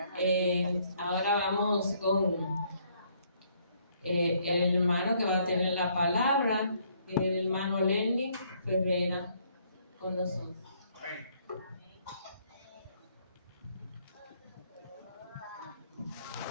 Ahora vamos con el hermano que va a tener la palabra, el hermano Lenny Ferreira, con nosotros.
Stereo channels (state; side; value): inverted; both; correlation -0.67